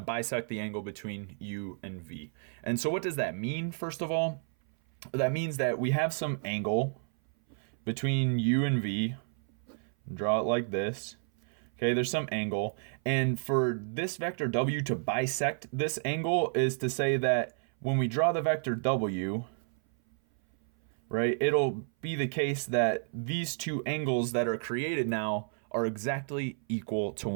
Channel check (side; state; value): left; silent; 57 dB below the other